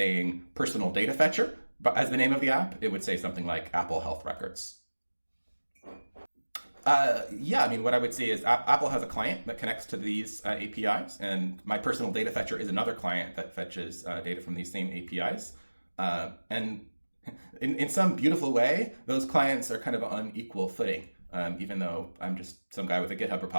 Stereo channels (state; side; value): inverted; both; correlation -1.00